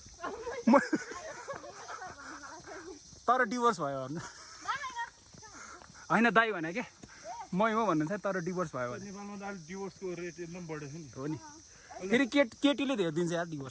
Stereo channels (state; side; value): identical; both; correlation 1.00